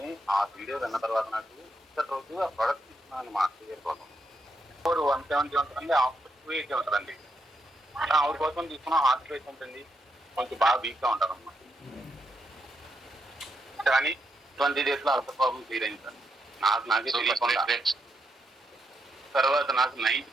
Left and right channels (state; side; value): normal; both; correlation 0.80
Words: ఆ వీడియో విన్న తర్వాత నాకు ఇప్పటి రోజు ఆ ప్రోడక్ట్ తీసుకున్నాను మా ఇయర్ ఫోన్ 170 ఉంటుందండి, ఆఫర్ 280 ఉంటుందండి. ఆవిడ కోసం తీసుకున్న హార్ట్ రేట్ ఉంటుంది, కొంచెం బాగా వీక్ గా ఉంటారు అన్నమాట. కానీ 20 days లో అల్సర్ ప్రాబ్లం క్లియర్ అయింది సార్. నాకే తెలియకుండా. తర్వాత నాకు 9th